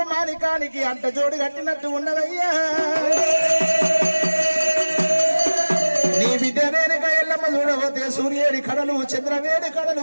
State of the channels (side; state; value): both; inverted; correlation -1.00